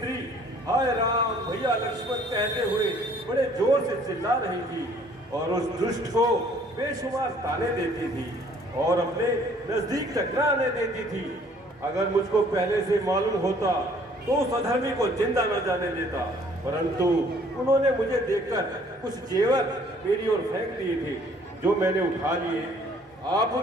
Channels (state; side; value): normal; both; correlation 0.58